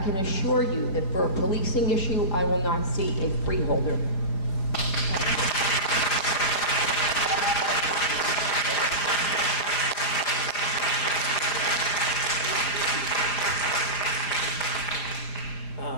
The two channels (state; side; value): late; right; 5.0 ms